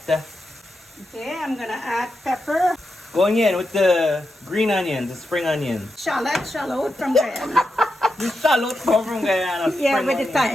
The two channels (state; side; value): normal; both; correlation 0.87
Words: Okay, I'm gonna add pepper. Going in with the green onions, the spring onions. Shallot from Guyana. The shallot come from Guyana. Yeah, with the